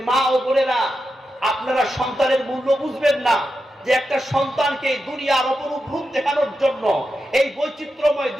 মা ও বোনেরা, আপনারা সন্তানের মূল্য বুঝবেন না, যে একটা সন্তানকে দুনিয়ার অপরূপ রূপ দেখানোর জন্য, এই বৈচিত্র্যময়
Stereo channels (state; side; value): normal; both; correlation 0.89